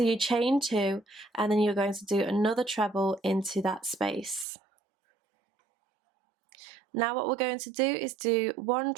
you chain 2 and then you're going to do another treble into that space. Now what we're going to do is do 1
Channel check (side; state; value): left; drops out; at 4.5 s